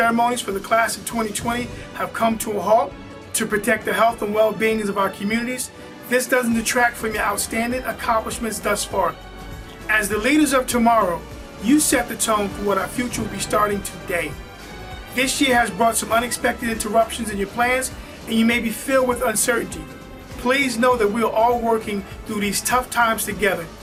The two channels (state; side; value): identical; both; correlation 1.00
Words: for the class of 2020 have come to a halt to protect the health and well-being of our communities, this doesn't detract from your outstanding accomplishments thus far. As the leaders of tomorrow, you set the tone for what our future will be starting today. This year has brought some unexpected interruptions in your plans, and you may be filled with uncertainty. Please know that we are all working through these tough times together